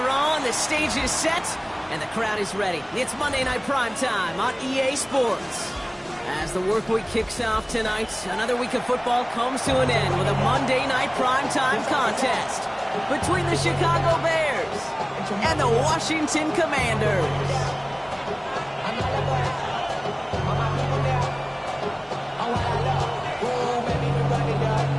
on, the stage is set, and the crowd is ready. It's Monday Night Primetime on EA Sports. As the work week kicks off tonight, another week of football comes to an end with a Monday Night Primetime contest between the Chicago Bears and the Washington Commanders.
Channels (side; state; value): both; identical; correlation 1.00